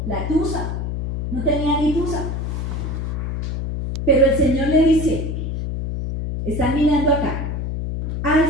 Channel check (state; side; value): noise; left; hum, 3 dB below the sound